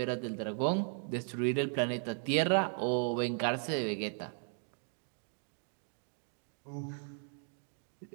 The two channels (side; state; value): left; silent; 53 dB below the other